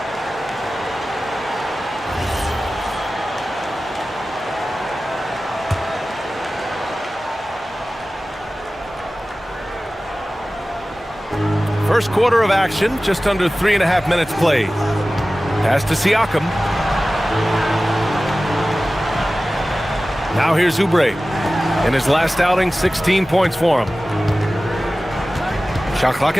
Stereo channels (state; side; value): normal; both; correlation 0.96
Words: First quarter of action, just under 3.5 minutes played. Pass to Siakam. Now here's Oubre. In his last outing, 16 points for him. Shot clock